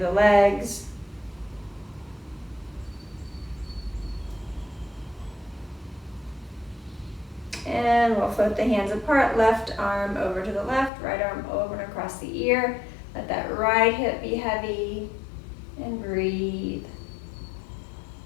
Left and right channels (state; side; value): drops out; right; at 10.9 s